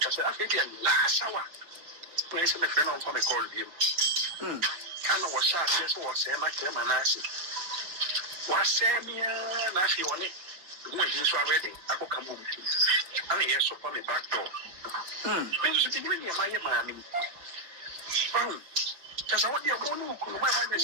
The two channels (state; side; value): late; left; 6.2 ms